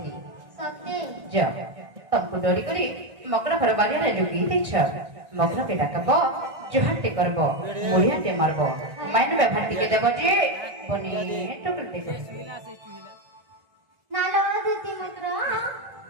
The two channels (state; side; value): late; left; 1.6 ms